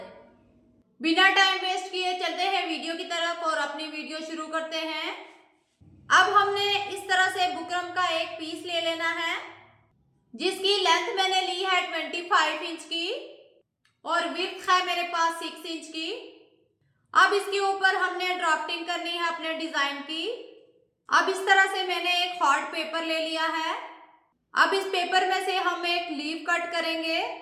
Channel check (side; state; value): both; identical; correlation 1.00